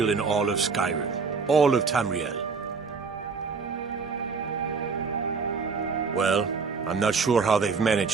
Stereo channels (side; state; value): left; quieter; 5.0 dB